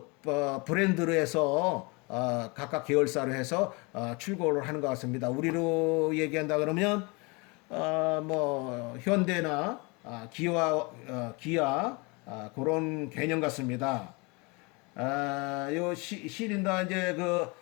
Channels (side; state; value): right; quieter; 28.5 dB